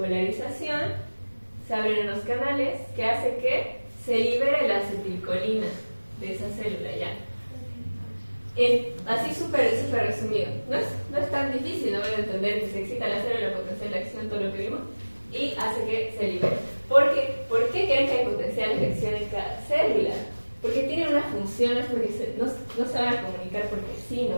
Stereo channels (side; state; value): both; inverted; correlation -1.00